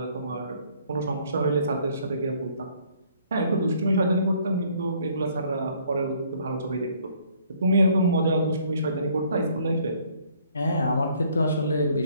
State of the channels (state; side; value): inverted; both; correlation -0.62